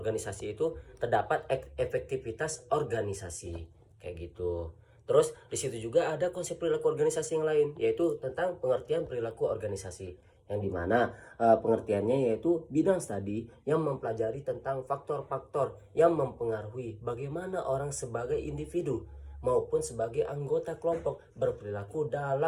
itu terdapat efektivitas organisasi, kayak gitu. Terus di situ juga ada konsep perilaku organisasi yang lain, yaitu tentang pengertian perilaku organisasi, yang dimana pengertiannya yaitu bidang studi yang mempelajari tentang faktor-faktor yang mempengaruhi bagaimana orang sebagai individu maupun sebagai anggota kelompok berperilaku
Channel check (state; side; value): identical; both; correlation 1.00